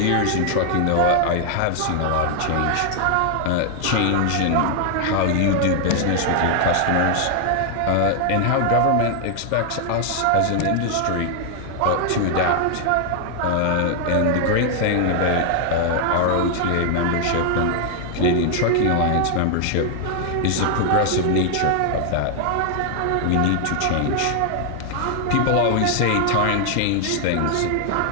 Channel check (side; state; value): both; different; correlation 0.00